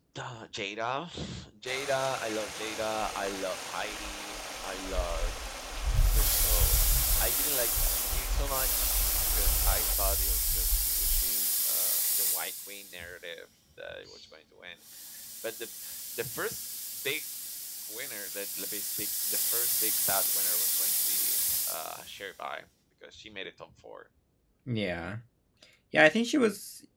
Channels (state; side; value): identical; both; correlation 1.00